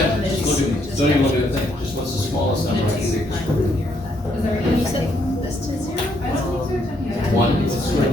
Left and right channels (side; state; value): both; normal; correlation 0.72